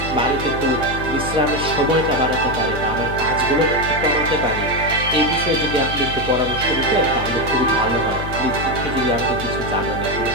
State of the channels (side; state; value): left; noise; hum, 7 dB below the sound